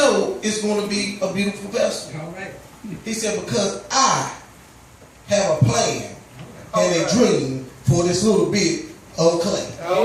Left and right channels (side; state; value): both; identical; correlation 1.00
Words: it's going to be a beautiful vessel? All right. He said, because I have a plan and a dream for this little bit of clay.